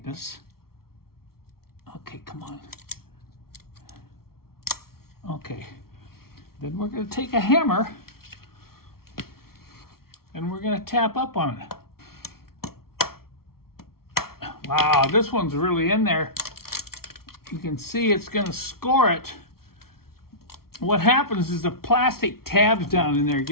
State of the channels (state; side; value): late; right; 0.94 ms